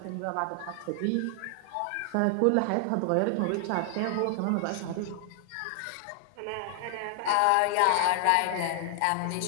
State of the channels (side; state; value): both; different; correlation 0.00